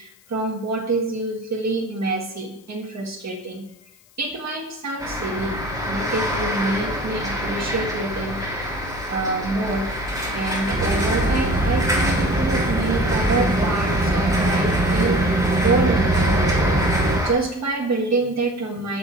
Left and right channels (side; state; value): left; noise; hiss, 29 dB below the sound